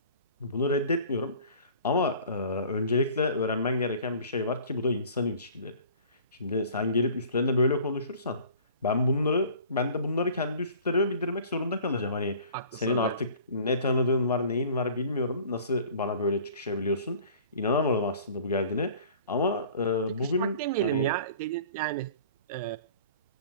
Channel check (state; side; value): inverted; both; correlation -0.48